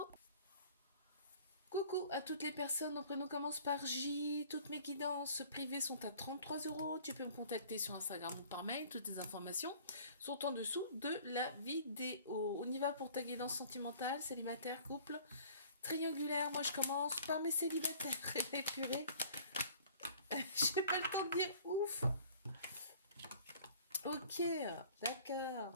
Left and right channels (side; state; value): both; inverted; correlation -0.50